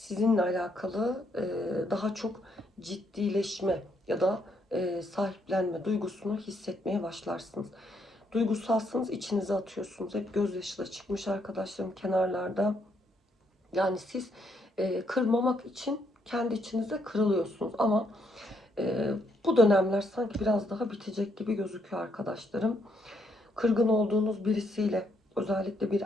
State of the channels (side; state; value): both; normal; correlation 0.74